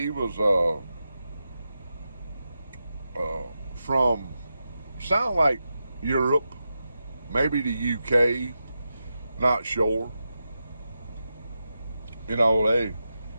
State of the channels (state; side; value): inverted; both; correlation -0.89